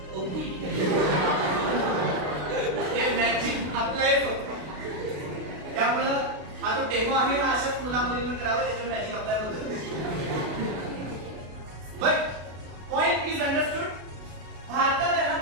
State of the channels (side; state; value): left; late; 32 ms